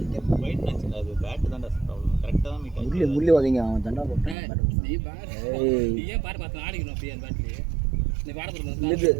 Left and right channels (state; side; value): drops out; left; at 4.4 s